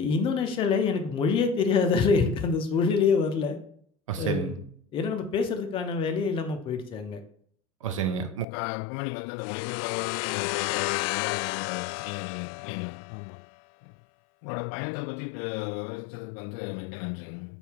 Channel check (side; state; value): right; drops out; at 8.5 s